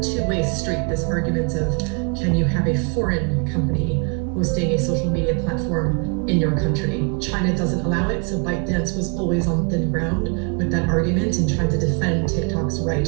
two-way street, this argument of, can you have a foreign company hosting a social media platform in your country? China doesn't allow it, so ByteDance was always on thin ground with that argument and trying to defend TikTok's right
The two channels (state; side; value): quieter; left; 35.8 dB